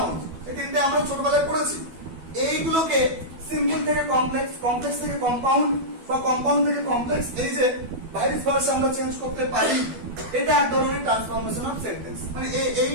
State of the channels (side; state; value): left; late; 12 ms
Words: এই তিনটে আমরা ছোটবেলায় পড়েছি। এইগুলোকে সিম্পল থেকে কমপ্লেক্স, কমপ্লেক্স থেকে কম্পাউন্ড বা কম্পাউন্ড থেকে কমপ্লেক্স, এই যে ভাইস ভার্সা আমরা চেঞ্জ করতে পারি, এটা এক ধরনের ট্রান্সফরমেশন অফ সেন্টেন্স। মানে